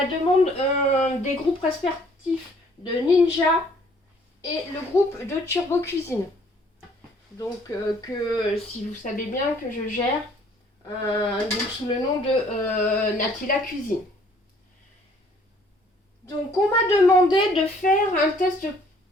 demande des groupes respectifs de Ninja et le groupe de Turbo Cuisine. Donc que si vous savez bien que je gère donc sous le nom de Natila Cuisine. Donc on m'a demandé de faire un test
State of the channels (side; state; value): both; normal; correlation 0.60